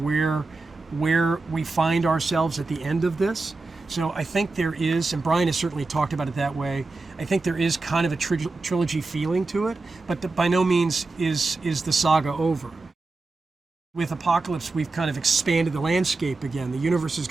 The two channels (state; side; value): quieter; left; 3.6 dB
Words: where we find ourselves at the end of this. So I think there is, and Bryan has certainly talked about it that way, I think there is kind of a trilogy feeling to it, but by no means is the saga over. With Apocalypse, we've kind of expanded the landscape again. The universe has